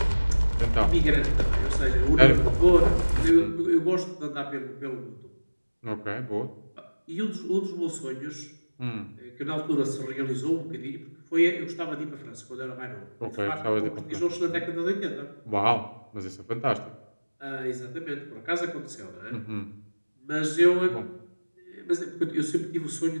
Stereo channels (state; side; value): inverted; both; correlation -1.00